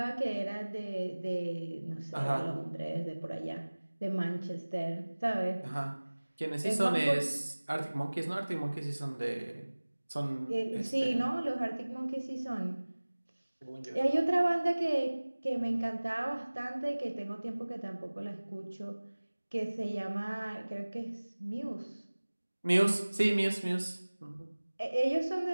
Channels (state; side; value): inverted; both; correlation -1.00